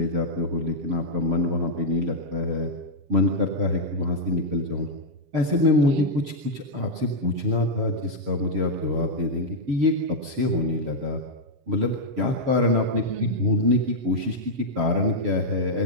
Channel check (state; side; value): late; left; 7.4 ms